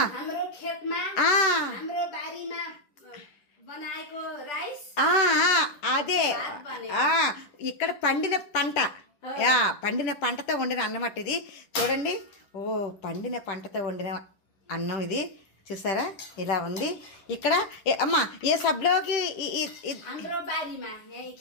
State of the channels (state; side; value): late; right; 10 ms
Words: हाम्रो खेतमा हाम्रो बारीमा बनाएको राइस। అదే ఇక్కడ పండిన పంట, పండిన పంటతో వండిన అన్నం అట్ట ఇది. చూడండి, ఓ పండిన పంటతో వండిన అన్నం ఇది. చూసారా ఇలా ఉంది. ఇక్కడ అమ్మా ఏ సబ్లోకి हाम्रो बारीमा यही